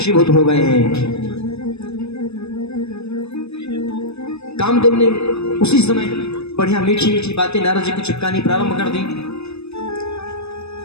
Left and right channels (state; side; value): late; right; 0.80 ms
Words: हो गए हैं। कामदेव ने उसी समय बढ़िया मीठी मीठी बातें नारद जी को चिपकानी प्रारंभ कर दी।